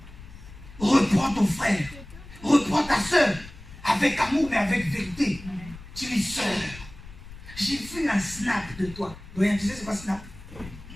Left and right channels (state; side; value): noise; left; rumble, 17 dB below the sound